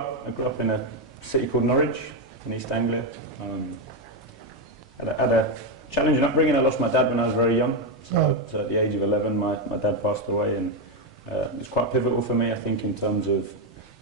in a city called Norwich in East Anglia. Had a challenging upbringing. I lost my dad when I was very young. So at the age of 11, my dad passed away, and it was quite pivotal for me. I think in terms of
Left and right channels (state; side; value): normal; both; correlation 0.06